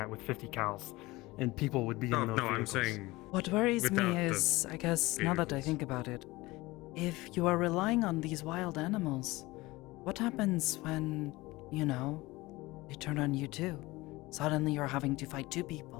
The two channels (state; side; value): quieter; right; 20.7 dB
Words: with 50 cals, and people would be in those I'm vehicles. saying What worries without me the is, I guess, now that I think about it, if you are relying on these wild animals, what happens when, you know, they turn on you too? Suddenly you're having to fight two